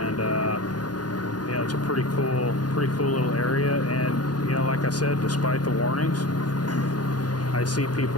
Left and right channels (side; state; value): right; late; 0.69 ms